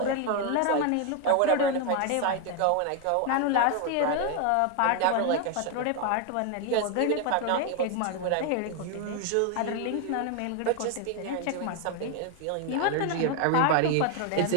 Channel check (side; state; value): both; different; correlation 0.01